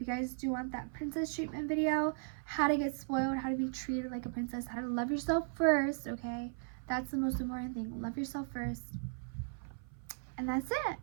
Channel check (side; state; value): left; silent; 53 dB below the other